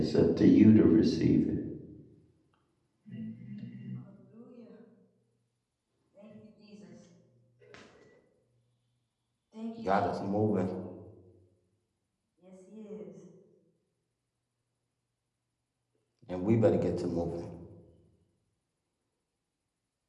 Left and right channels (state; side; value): identical; both; correlation 1.00